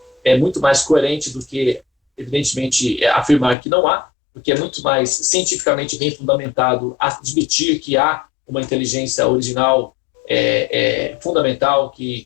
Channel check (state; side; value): drops out; right; at 3.6 s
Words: é muito mais coerente do que, evidentemente, afirmar que não há, porque é muito mais cientificamente bem fundamentado admitir que há uma inteligência original fundamental